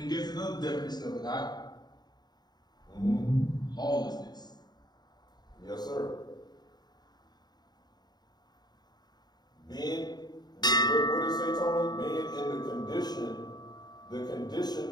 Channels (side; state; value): right; late; 0.20 ms